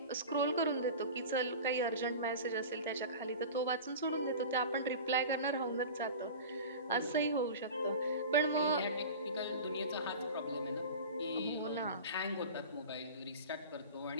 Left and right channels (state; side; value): inverted; both; correlation -0.34